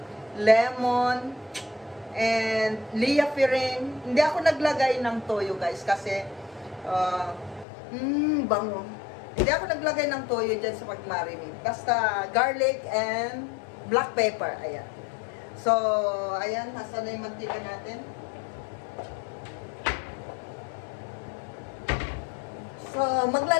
lemon, and liapirin. Hindi ako naglagay ng toyo guys kasi bango. Hindi ako naglagay ng toyo dyan sa pag-marinate. Basta garlic and black pepper. Ayan. So, ayan. Nasaan na yung mantika natin? So,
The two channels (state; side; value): drops out; right; at 7.7 s